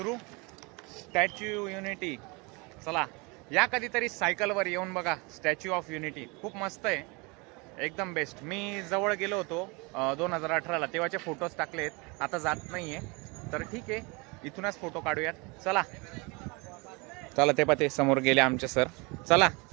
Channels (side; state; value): left; quieter; 28.0 dB